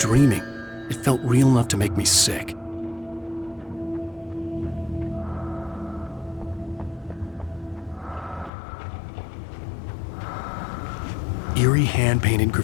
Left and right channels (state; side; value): drops out; right; at 8.5 s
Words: it felt real enough to make me sick. Eerie hand-painted